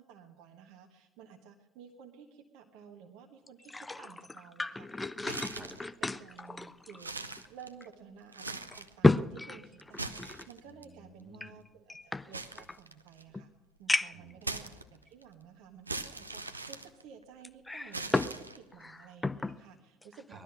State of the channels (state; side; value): normal; both; correlation 0.79